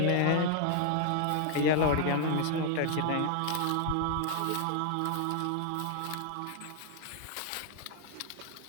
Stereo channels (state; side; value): different; both; correlation 0.00